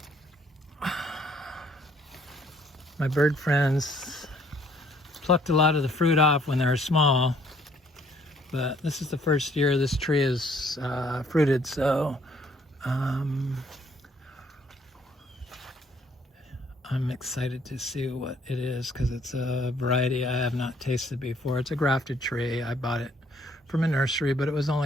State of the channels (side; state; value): both; normal; correlation 0.63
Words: My bird friends plucked a lot of the fruit off when they were small, but this is the first year this tree is fruited, so I'm excited to see what it is because it's a variety I have not tasted before. It's a grafted tree. I bought it from a nursery, but it was